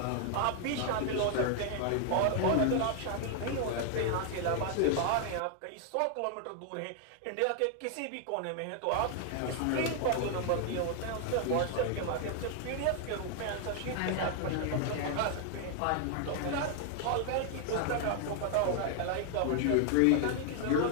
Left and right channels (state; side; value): different; both; correlation 0.00